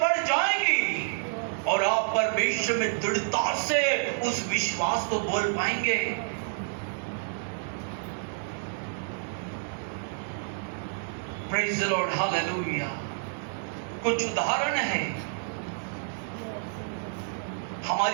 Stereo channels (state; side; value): silent; left; digital silence